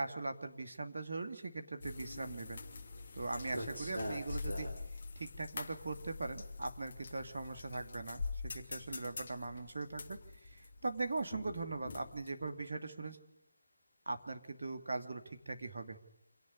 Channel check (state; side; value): inverted; both; correlation -0.89